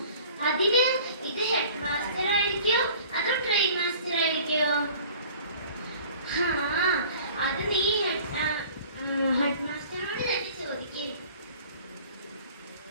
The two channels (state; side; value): inverted; both; correlation -0.48